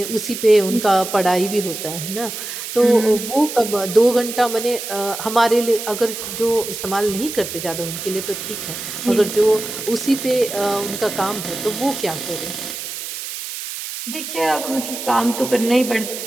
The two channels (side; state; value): right; noise; hiss, 7 dB below the sound